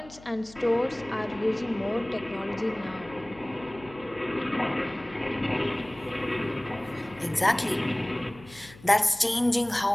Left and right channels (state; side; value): noise; left; hum, 21 dB below the sound